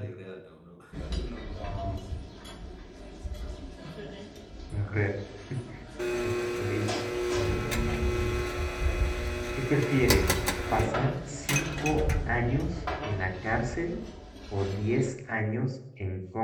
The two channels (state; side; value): identical; both; correlation 1.00